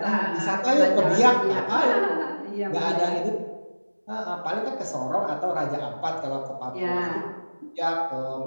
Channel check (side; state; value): both; inverted; correlation -1.00